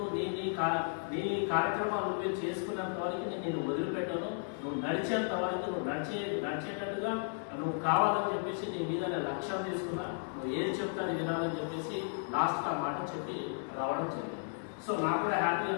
నీ కార్యక్రమాలు నువ్వే చేసుకున్నంత వరకు నేను వదిలిపెట్టాను. నువ్వు నడిచేంత వరకు నువ్వు నడిచేటట్టుగా నువ్వు కావాలని చెప్పేసి నీ మీద లక్ష్యం తీసుకున్నా, నువ్వు ఏది చెప్తాను వినాలని చెప్పేసి లాస్ట్ ఆ మాట చెప్పి రావడం జరిగింది. సో నాకు కూడా హ్యాపీ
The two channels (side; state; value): right; silent; 55 dB below the other